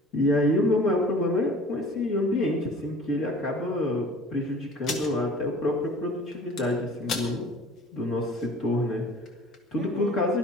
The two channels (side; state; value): both; normal; correlation 0.47